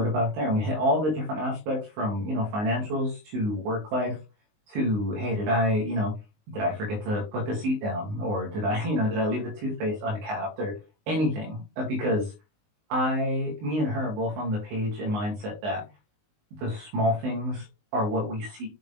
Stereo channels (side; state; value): left; late; 19 ms